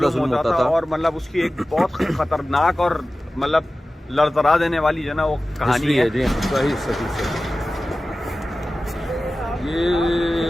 ظلم ہوتا تھا. اور مطلب اس کی ایک بہت خطرناک اور مطلب لرزرا دینے والی جو ہے نا وہ کہانی ہے. جی صحیح.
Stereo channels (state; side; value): normal; both; correlation 0.96